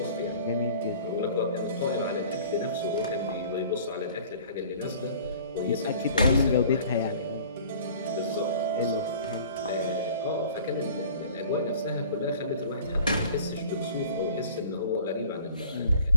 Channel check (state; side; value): inverted; both; correlation -0.49